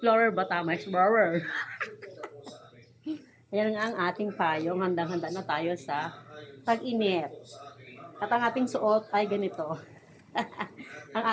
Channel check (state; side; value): identical; both; correlation 1.00